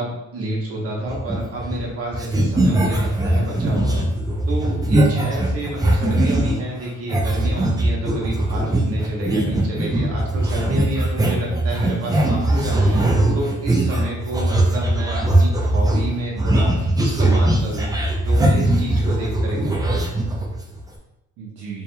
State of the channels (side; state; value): both; normal; correlation 0.80